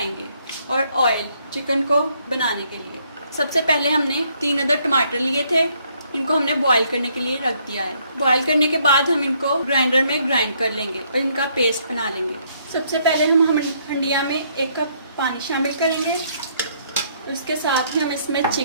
और ऑयल चिकन को बनाने के लिए सबसे पहले हमने 3 अदद टमाटर लिए थे। इनको हमने बॉईल करने के लिए रख दिया है। बॉईल करने के बाद हम इनको ग्राइंडर में ग्राइंड कर लेंगे और इनका पेस्ट बना लेंगे। सबसे पहले हम हंडिया में 1 कप पानी शामिल करेंगे। उसके साथ ही हम इसमें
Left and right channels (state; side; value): inverted; both; correlation -0.68